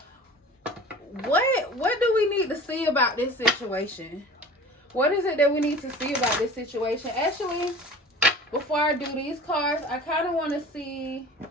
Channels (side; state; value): both; normal; correlation 0.41